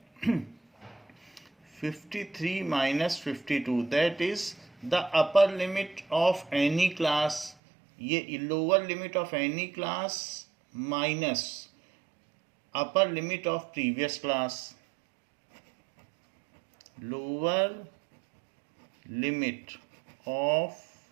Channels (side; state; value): left; drops out; at 7.6 s